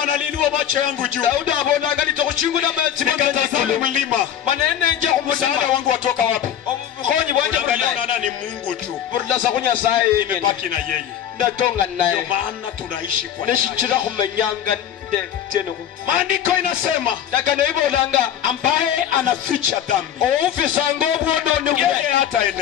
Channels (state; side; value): quieter; right; 9.9 dB